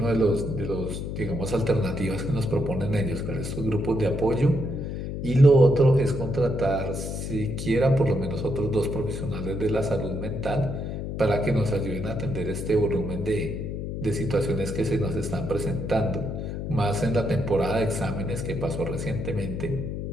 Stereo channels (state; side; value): noise; left; hum, 5 dB below the sound